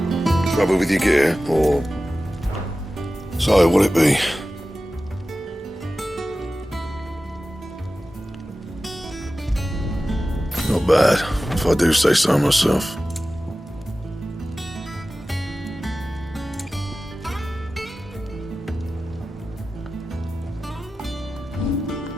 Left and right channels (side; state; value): both; normal; correlation 0.95